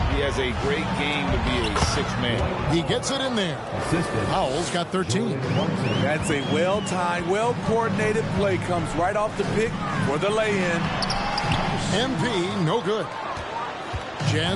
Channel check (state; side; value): identical; both; correlation 1.00